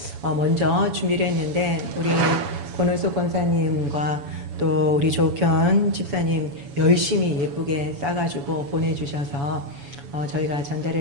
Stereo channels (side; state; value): left; late; 7.1 ms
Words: 먼저 준비를 했는데 우리 권은숙 권사님과 또 우리 조현 집사님 열심히 예쁘게 싸가지고 보내주셔서 저희가